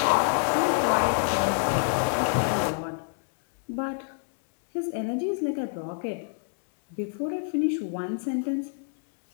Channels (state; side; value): silent; right; digital silence